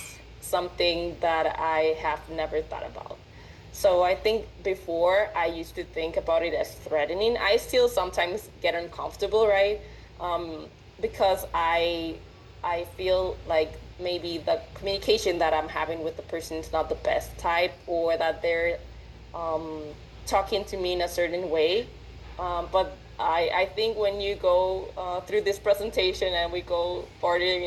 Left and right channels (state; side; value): identical; both; correlation 1.00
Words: something that I have never thought about. So I think before I used to think about it as threatening. I still sometimes get uncomfortable, right? Because I feel like maybe the communication that I'm having with the person is not the best type, or that they're talking to me in a certain way. But I think when you go through this presentation and we go further